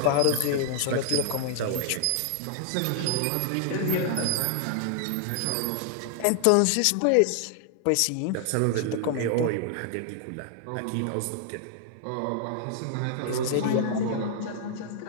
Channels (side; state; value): both; different; correlation 0.00